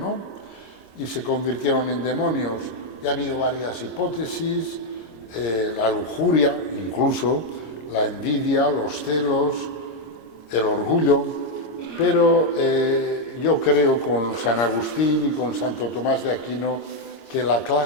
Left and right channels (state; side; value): late; right; 26 ms